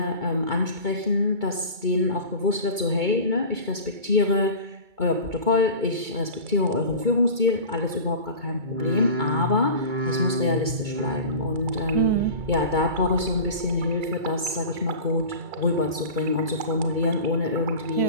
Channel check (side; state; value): left; late; 2.3 ms